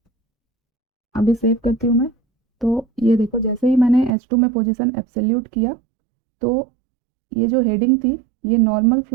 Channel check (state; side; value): drops out; left; at 4.1 s